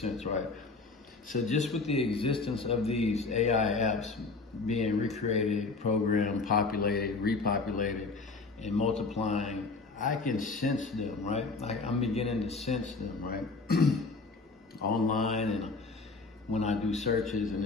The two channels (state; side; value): quieter; right; 4.0 dB